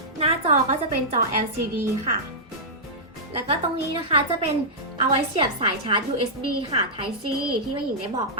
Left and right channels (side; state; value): both; normal; correlation -0.12